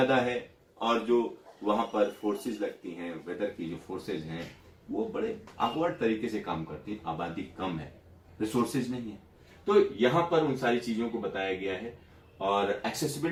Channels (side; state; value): both; identical; correlation 1.00